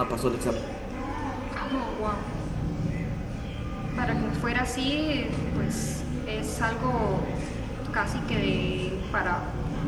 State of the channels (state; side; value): identical; both; correlation 1.00